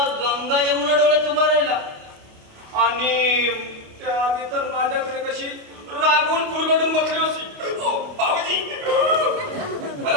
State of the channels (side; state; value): left; late; 28 ms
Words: गंगा यमुना डोळ्यात उभा राहिला. आणि त्याआधी तर माझ्याकडे कशी रागवून फुरगडून बसली होती. बाबूजी